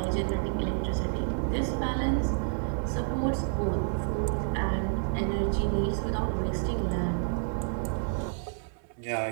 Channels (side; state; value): left; silent; 58 dB below the other